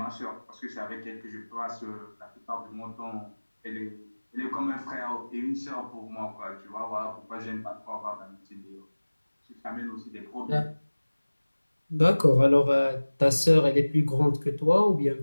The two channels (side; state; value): both; inverted; correlation -1.00